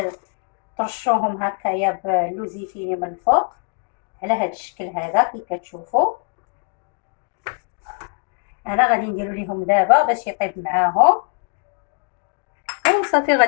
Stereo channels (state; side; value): quieter; right; 37.4 dB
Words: ترشوهم هكايا باللوزيفيري من الفوق على هذا الشكل هذا كي كتشوفوا. انا غادي نديرو ليهم دابا باش يطيب معاهم، وصافي